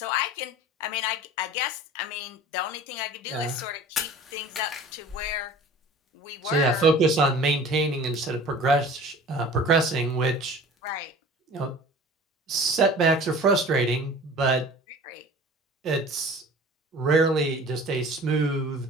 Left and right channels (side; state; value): both; normal; correlation 0.43